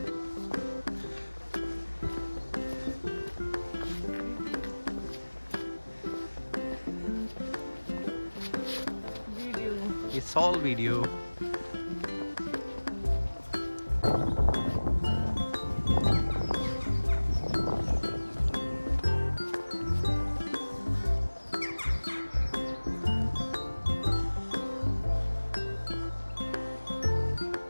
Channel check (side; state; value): both; inverted; correlation -1.00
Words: It's all video.